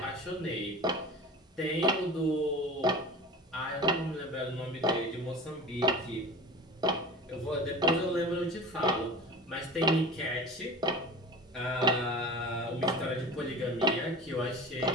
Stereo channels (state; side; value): normal; both; correlation 0.35